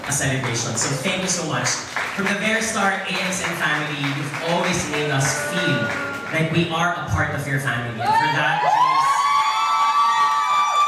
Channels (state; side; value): identical; both; correlation 1.00